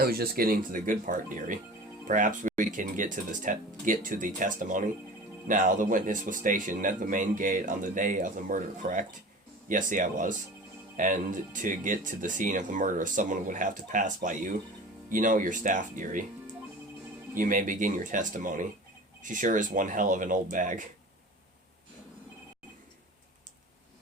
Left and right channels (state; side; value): normal; both; correlation 0.38